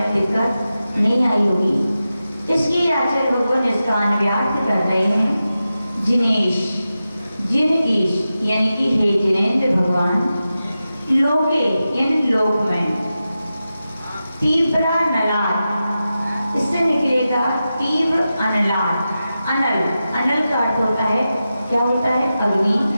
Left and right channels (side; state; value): both; inverted; correlation -0.92